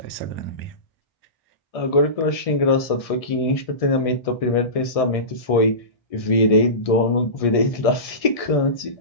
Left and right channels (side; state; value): right; late; 1.7 ms